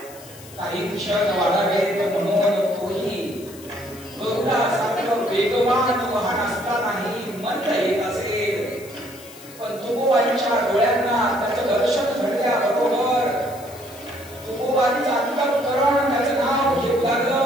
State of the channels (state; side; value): noise; left; hiss, 19 dB below the sound